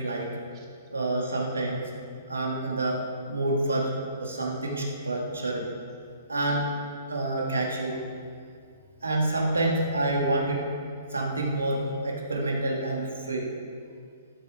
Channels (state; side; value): inverted; both; correlation -0.62